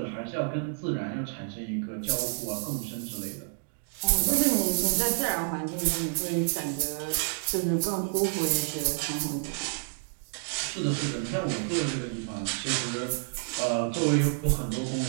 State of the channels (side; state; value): left; silent; 58 dB below the other